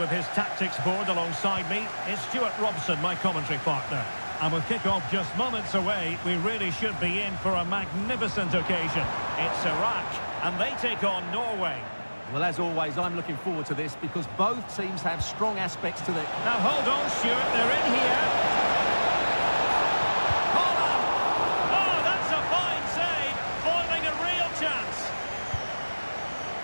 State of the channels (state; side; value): inverted; both; correlation -1.00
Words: his tactics board alongside me is Stuart Robson, my commentary partner. And with kick-off just moments away, we really should be in for a magnificent occasion. It's Iraq, and they take on Norway. Well, as always, I'm looking forward to this because both teams have strong aspects to them. Now hold on, Stuart, they're in here.